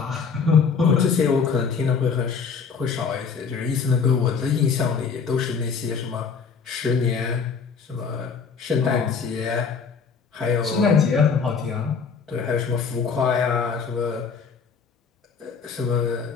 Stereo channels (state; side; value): quieter; right; 5.7 dB